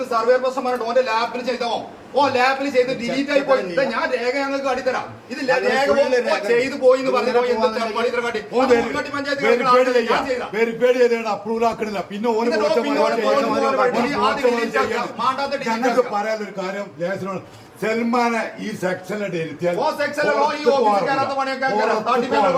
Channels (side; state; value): both; identical; correlation 1.00